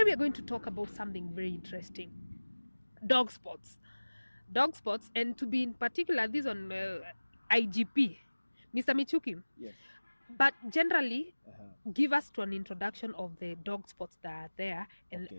we are going to talk about something very interesting: dog spots. And to be in particular this on IGP, Mr. Michuki. Yes. But generally, give us to an introduction of the dog spots that are there, and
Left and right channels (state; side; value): inverted; both; correlation -1.00